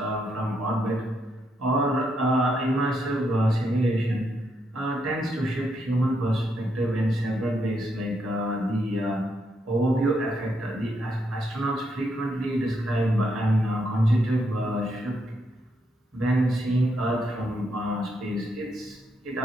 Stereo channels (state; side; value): normal; both; correlation 0.78